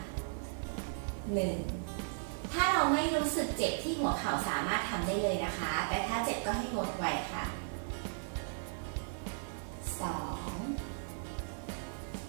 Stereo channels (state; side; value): silent; left; digital silence